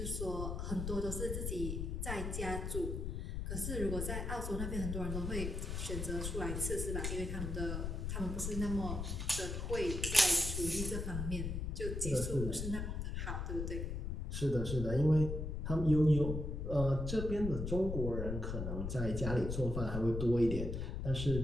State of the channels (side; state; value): left; noise; rumble, 3 dB below the sound